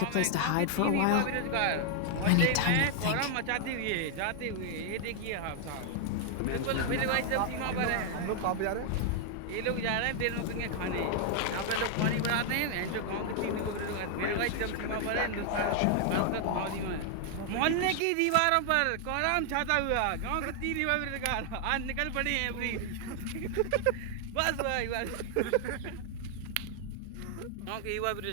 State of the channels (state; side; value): different; both; correlation 0.00